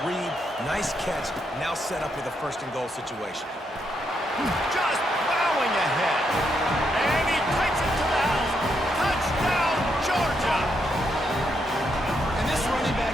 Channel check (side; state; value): both; normal; correlation 0.79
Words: read, nice catch. Now set up with a 1st and goal situation. Just plowing ahead. And he takes it to the house. Touchdown, Georgia. And this running